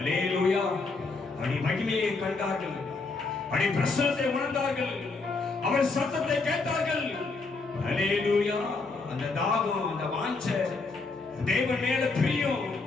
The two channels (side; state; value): right; quieter; 3.9 dB